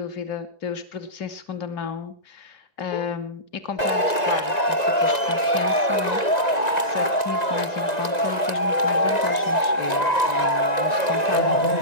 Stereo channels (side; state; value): right; late; 1.9 ms